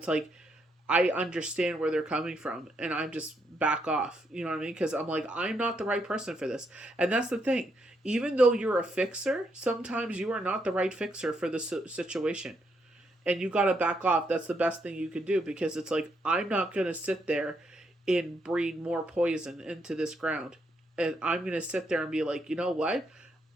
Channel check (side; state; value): both; normal; correlation 0.77